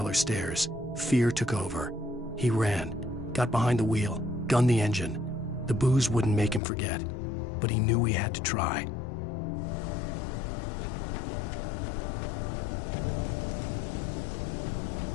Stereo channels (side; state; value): right; drops out; at 6.6 s